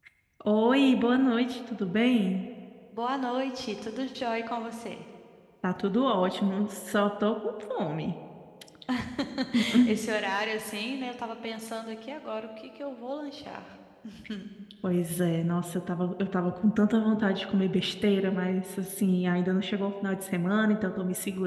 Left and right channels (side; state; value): both; identical; correlation 1.00